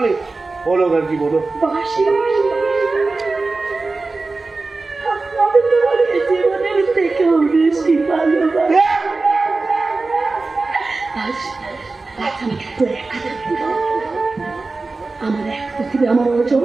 বলো আর কি বলো। বাসি আমি তোমার জীবনের থেকেও বেশি ভালোবাসি। আজ আমাকে একটু একা থাকতে দাও। আমার এক পৃথিবী, আমার অর্জন,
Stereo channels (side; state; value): left; quieter; 3.6 dB